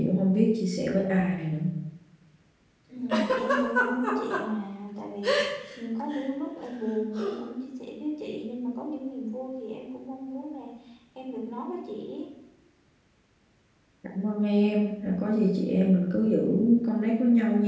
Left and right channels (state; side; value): identical; both; correlation 1.00